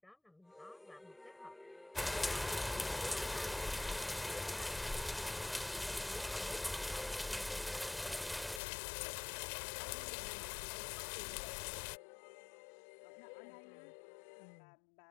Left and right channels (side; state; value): right; drops out; at 8.6 s